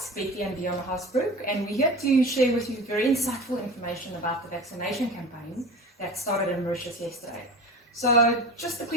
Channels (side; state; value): both; normal; correlation 0.34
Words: Betty and Dion Hasbrook, and we're here to share with you very insightful information about the vaccination campaign that started in Mauritius yesterday. So, just a